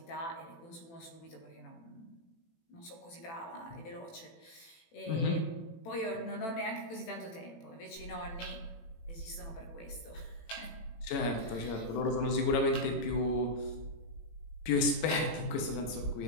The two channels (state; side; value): late; right; 18 ms